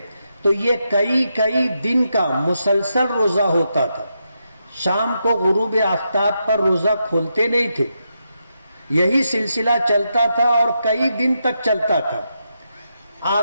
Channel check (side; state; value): both; inverted; correlation -0.84